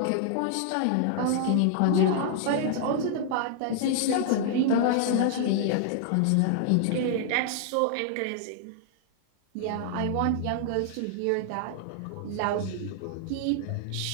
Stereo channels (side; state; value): both; different; correlation -0.01